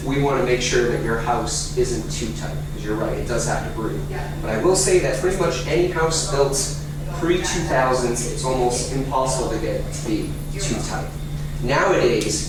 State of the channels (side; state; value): both; identical; correlation 1.00